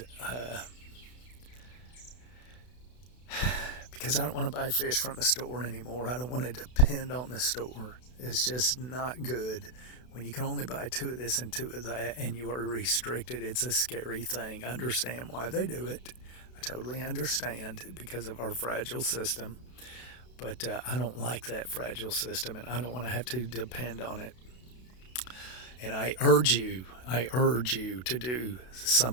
because I don't want to buy fish from the store anymore. I don't want to depend on the store. It's just not good when you can only buy two of this and two of that, and you are restricted. It's a scary thing. I understand why they do it. I totally understand because of our fragile system. But I don't like that fragile system, and I don't want to have to depend on it. And I urge you to do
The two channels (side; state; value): right; late; 32 ms